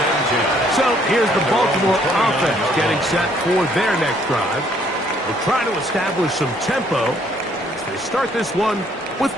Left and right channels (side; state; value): both; normal; correlation 0.65